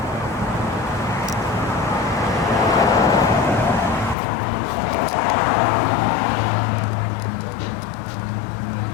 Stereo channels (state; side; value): drops out; right; at 4.2 s